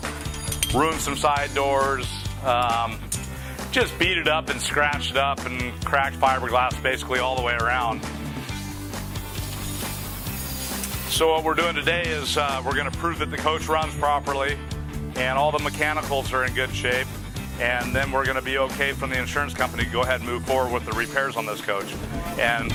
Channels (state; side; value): identical; both; correlation 1.00